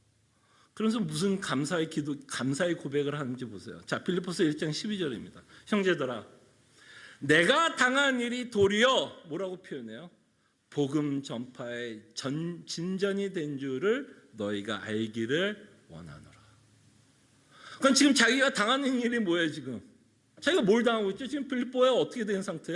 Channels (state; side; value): identical; both; correlation 1.00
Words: 그래서 무슨 감사의 고백을 하는지 보세요. 자, 빌립보서 1장 12절입니다. 형제들아, 내가 당한 일이 도리어 뭐라고 표현해요? 복음 전파의 진전이 된 줄을 너희가 알기를 원하노라. 그럼 지금 자기가 당하는 일이 뭐예요? 지금 자기가 뭘 당하고 있죠? 지금 빌립보에 어떻게 된